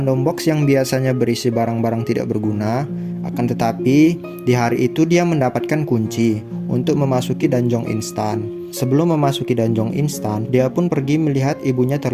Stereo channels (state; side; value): identical; both; correlation 1.00